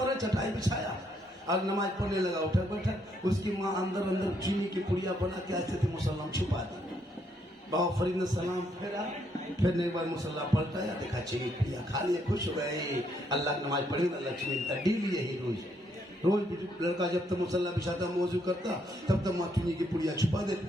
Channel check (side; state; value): both; normal; correlation 0.73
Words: है, चटाई बिछाया और नमाज पढ़ने लगा, उठा बैठा। उसकी माँ अंदर अंदर चीनी की पुड़िया बना के ऐसे थे मुसल्ला छुपा दी। बाबा फरीद ने सलाम फेरा, फिर एक बार मुसल्ला पलटाया, देखा चीनी पुड़िया खा लिए, खुश हो गए। अल्लाह की नमाज पढ़ी ना, लक्ष्मी का डेली यही रोज लड़का जब तक मुसल्ला बिछाता मौजू करता तब तक माँ चीनी की पुड़िया छुपा